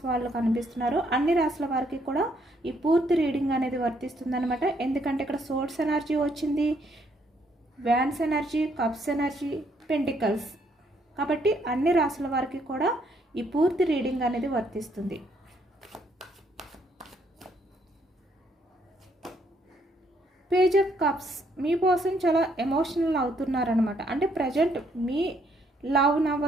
వాళ్ళు కనిపిస్తున్నారు. అన్ని రాశుల వారికి కూడా ఈ పూర్తి రీడింగ్ అనేది వర్తిస్తుంది అనమాట. ఎందుకంటే ఇక్కడ సోర్స్ ఎనర్జీ వచ్చింది, wands energy, cups energy, pentacles, కాబట్టి అన్ని రాశుల వారికి కూడా ఈ పూర్తి రీడింగ్ అనేది వర్తిస్తుంది. Page of cups, me person చాలా ఎమోషనల్ అవుతున్నారనమాట. అంటే ప్రజెంట్ మీ లవ్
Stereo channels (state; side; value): normal; both; correlation 0.70